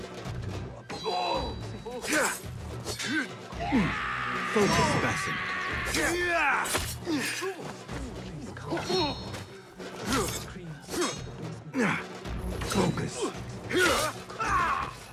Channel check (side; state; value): both; identical; correlation 1.00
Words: Focus, Basim. Focus.